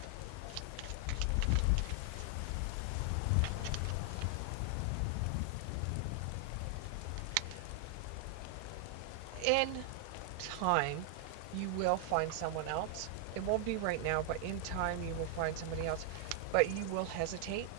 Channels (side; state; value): both; different; correlation 0.00